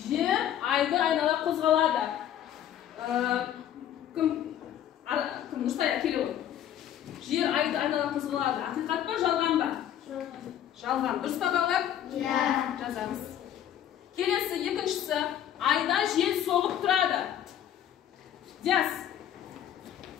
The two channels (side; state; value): right; quieter; 10.7 dB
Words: Жер айды айнала қозғалады. Кім Нұрсая Кереуов? Жер айды айнала қозғалады. Ақиқат па, жалған ба? Жалған. Дұрыс па балалар? Иә. Жазамыз. Келесі, екіншісі, айда жел соғып тұрады. Диас.